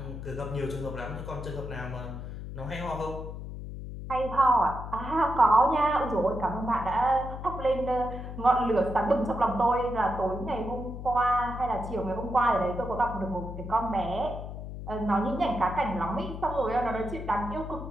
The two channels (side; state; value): left; noise; hum, 9 dB below the sound